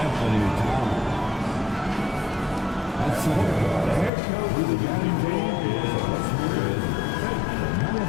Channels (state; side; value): drops out; right; at 4.1 s